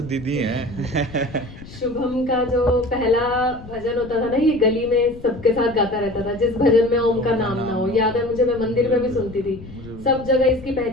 दीदी हैं। शुभम का जो पहला भजन होता था ना, ये गली में सबके साथ गाता रहता था, जिस भजन में ओम का नाम ना हो। याद है मुझे, मैं मंदिर में भी सुनती थी, सब जगह इसकी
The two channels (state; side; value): noise; left; rumble, 16 dB below the sound